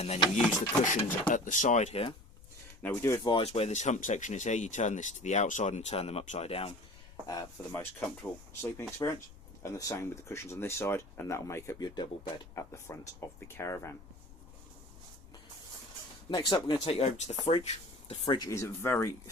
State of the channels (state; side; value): noise; left; rumble, 20 dB below the sound